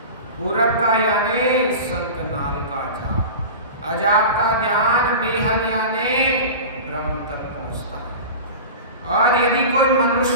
पूरब का यानी शंखनाल का जाप, अजाप का ध्यान बेहद यानी ब्रह्म तक पहुंचता है। और यदि कोई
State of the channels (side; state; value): both; inverted; correlation -0.32